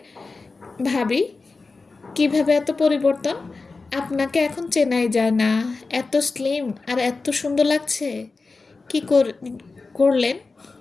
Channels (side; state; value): right; quieter; 3.9 dB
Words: ভাবি কিভাবে এত পরিবর্তন? আপনাকে এখন চেনাই যায় না, এত স্লিম আর এত সুন্দর লাগছে। কি করলেন?